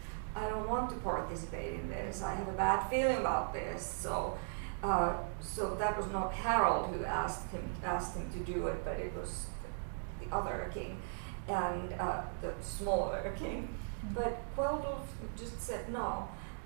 I don't want to participate in this. I have a bad feeling about this. So that was not Harold who asked him to do it, but it was the other king and the smaller king. But Kveldulf just said no,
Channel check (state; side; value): silent; left; digital silence